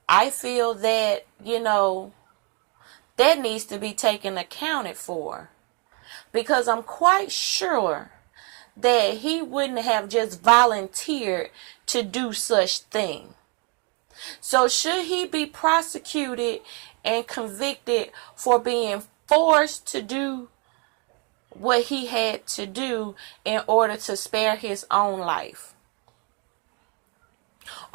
I feel that, that needs to be taken accounted for. Because I'm quite sure that he wouldn't have just volunteered to do such thing. So should he be prosecuted and convicted for being forced to do what he had to do in order to spare his own life?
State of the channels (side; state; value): left; quieter; 34.2 dB